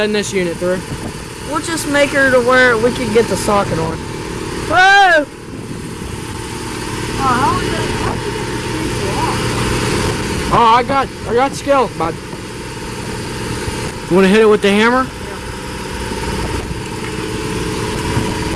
this unit through. we'll just make her to where we can get the socket on. Whoa! How did you get the Oh, I got skills, bud. You wanna hit it with the hammer? Yeah.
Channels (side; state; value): both; identical; correlation 1.00